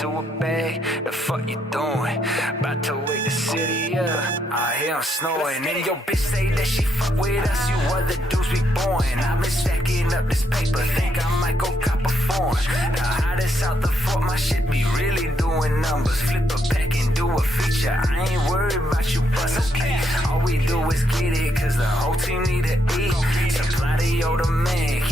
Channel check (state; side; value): normal; both; correlation 0.76